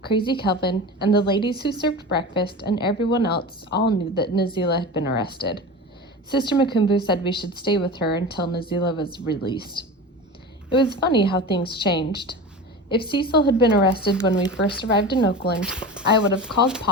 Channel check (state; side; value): normal; both; correlation 0.30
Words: Crazy Kelvin, and the ladies who served breakfast and everyone else all knew that Nazila had been arrested. Sister Makumbo said we should stay with her until Nazila was released. It was funny how things changed. If Cecil had been arrested when we first arrived in Oakland, I would have called